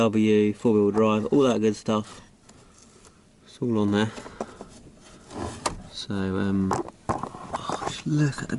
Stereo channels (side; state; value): both; identical; correlation 1.00